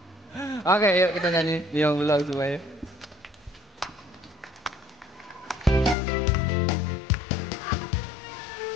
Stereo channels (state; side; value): drops out; right; at 6.0 s